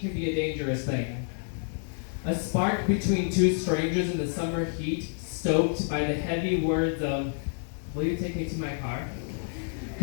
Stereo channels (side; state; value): right; silent; 59 dB below the other